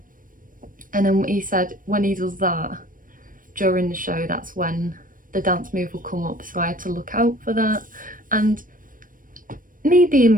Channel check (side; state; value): left; late; 0.40 ms